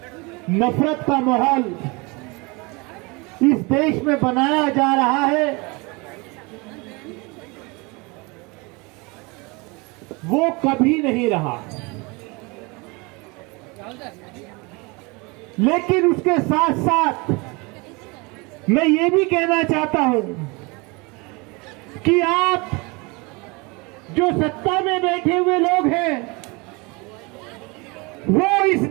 नफरत का माहौल इस देश में बनाया जा रहा है, वो कभी नहीं रहा। लेकिन उसके साथ साथ मैं ये भी कहना चाहता हूं कि आप जो सत्ता में बैठे हुए लोग हैं, वो इस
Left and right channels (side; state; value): left; quieter; 27.2 dB